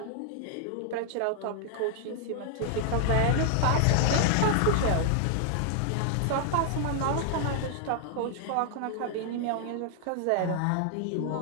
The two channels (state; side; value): different; both; correlation 0.00